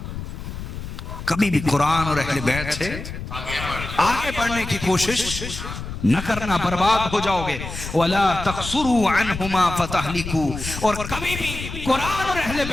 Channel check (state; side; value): noise; left; rumble, 8 dB below the sound